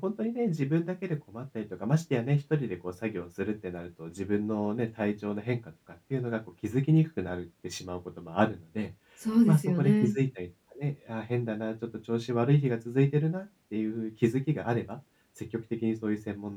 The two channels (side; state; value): both; identical; correlation 1.00